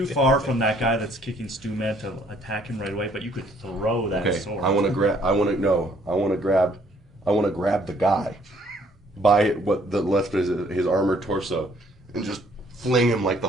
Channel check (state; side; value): normal; both; correlation 0.63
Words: far from that guy that's kicking Stumed to attack him right away, but you could throw that Okay, sword. I want to grab the guy by what the left is his armored torso and just fling him like the